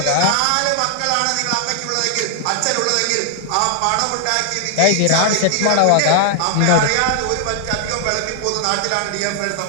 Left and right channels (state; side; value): different; both; correlation 0.00